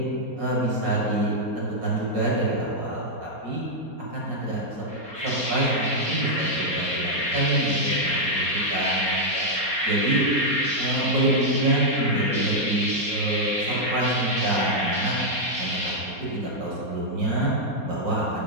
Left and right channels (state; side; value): late; left; 4.3 ms